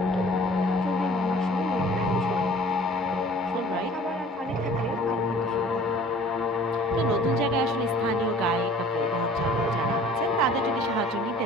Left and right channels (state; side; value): normal; both; correlation 0.49